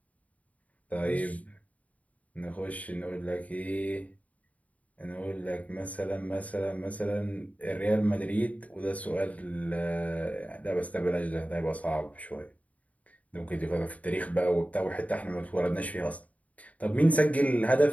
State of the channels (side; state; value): right; late; 0.070 ms